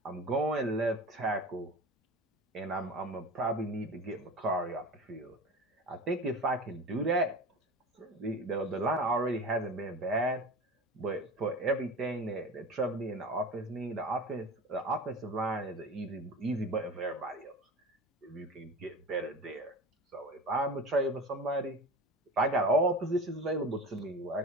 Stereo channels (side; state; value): both; normal; correlation 0.33